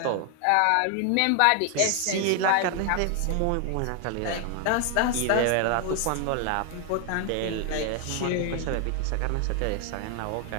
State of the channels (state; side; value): different; both; correlation 0.00